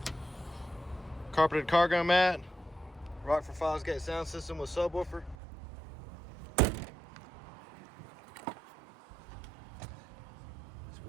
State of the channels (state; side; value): drops out; left; at 5.4 s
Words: carpeted cargo mat, Rockford Fosgate sound system with subwoofer. It's